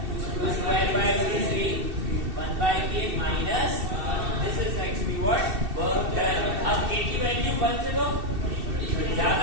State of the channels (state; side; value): late; left; 2.7 ms